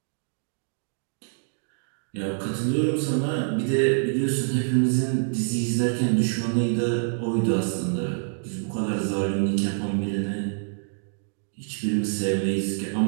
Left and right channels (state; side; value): silent; left; digital silence